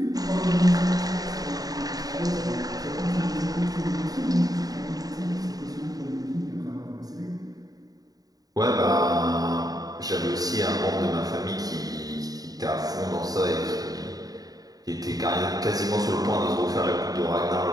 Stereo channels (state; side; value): late; left; 0.18 ms